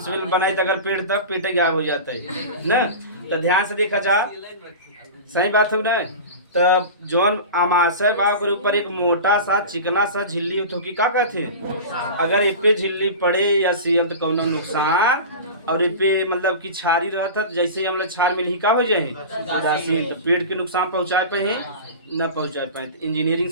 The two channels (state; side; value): inverted; both; correlation -0.31